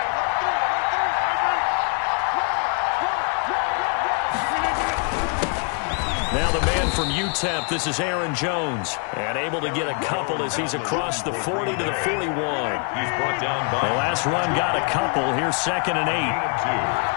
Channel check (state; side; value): quieter; right; 39.5 dB